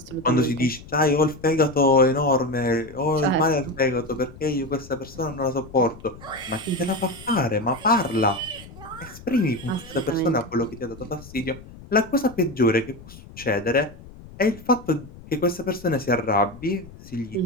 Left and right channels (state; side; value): noise; left; rumble, 18 dB below the sound